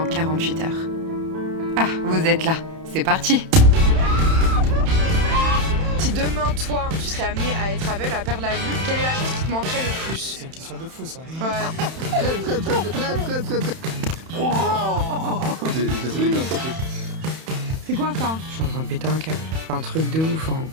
48 heures. Ah, vous êtes là, c'est parti! Si demain, toi, tu serais amené à être aveugle, à perdre la vue, quelle est la chose qui te manquerait le plus? C'est une question de fou ça. Ouais. C'est quoi ça? Je suis en train de péter un câble. C'est un truc de ouf, hein.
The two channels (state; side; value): late; left; 31 ms